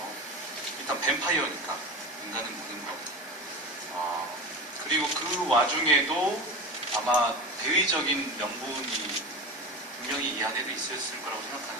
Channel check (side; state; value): both; normal; correlation 0.26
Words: 일단 뱀파이어니까 인간은 무는 것. 그리고 그 와중에도 아마 대의적인 명분이 분명히 이 안에도 있었을 거라고